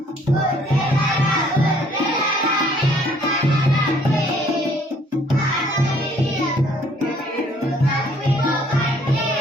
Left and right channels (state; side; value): normal; both; correlation 0.61